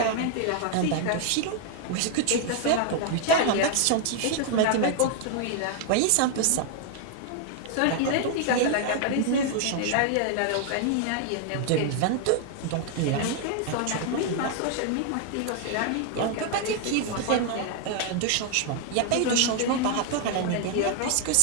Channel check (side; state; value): both; different; correlation 0.00